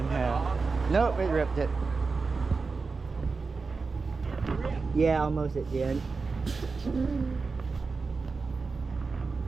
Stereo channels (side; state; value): left; quieter; 4.4 dB